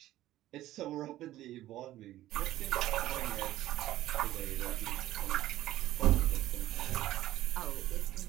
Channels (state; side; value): quieter; left; 14.6 dB